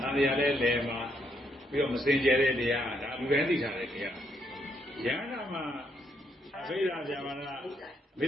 ဒါတရားလဲလဲမှာပြီးတော့မစင်ကြဲတဲ့တရားဒါလူတိုင်းသိထားတဲ့တရားယဟနာမှာအဘိဓါဇာဝရမိ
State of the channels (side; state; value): both; normal; correlation 0.75